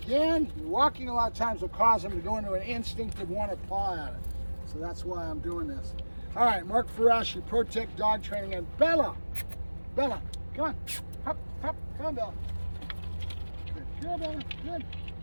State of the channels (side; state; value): both; inverted; correlation -1.00